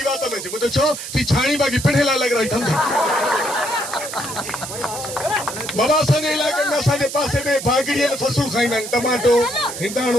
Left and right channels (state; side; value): noise; right; hiss, 8 dB below the sound